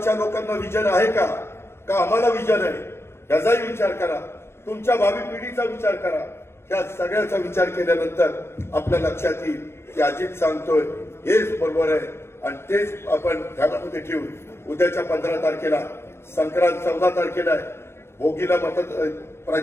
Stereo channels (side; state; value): right; late; 0.12 ms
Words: लोकांना विजन आहे का आम्हाला विजन आहे, याचाही विचार करा. तुमच्या भावी पिढीचा विचार करा. या सगळ्याचा विचार केल्यानंतर आपल्या लक्षात येईल की अजित सांगतोय हेच बरोबर आहे. आणि तेच आपण ध्यानामध्ये ठेवून उद्याच्या 15 तारखेला संक्रांत, 14 तारखेला आहे भोगीला